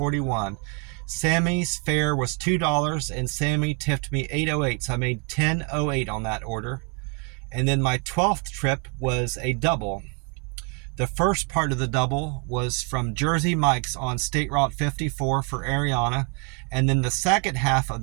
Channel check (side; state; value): left; quieter; 35.9 dB